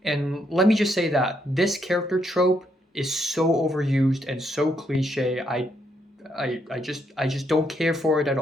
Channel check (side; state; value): both; normal; correlation 0.76